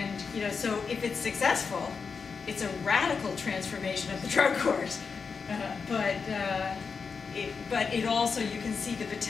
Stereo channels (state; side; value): quieter; right; 5.4 dB